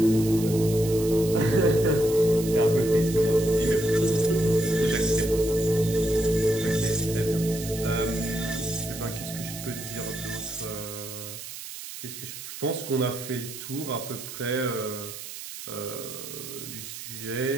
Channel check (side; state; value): right; noise; hiss, 11 dB below the sound